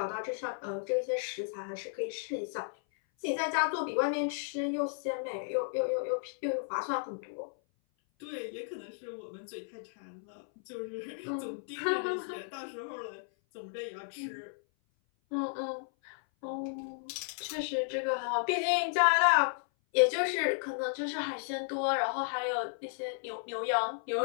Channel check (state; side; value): silent; right; 55 dB below the other